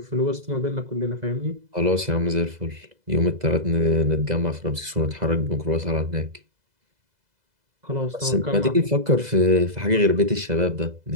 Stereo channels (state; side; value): late; left; 2.0 ms